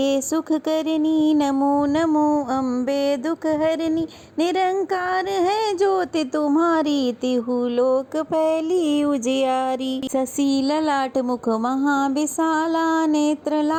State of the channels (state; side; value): identical; both; correlation 1.00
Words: सुख करनी, नमो नमो अम्बे दुख हरनी। निरंकार है ज्योति तुम्हारी, तिहु लोक फैली उजियारी। शशि ललाट मुख महाविशाला, नेत्र